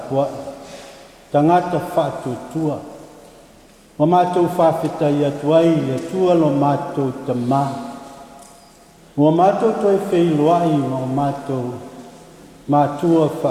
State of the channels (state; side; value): identical; both; correlation 1.00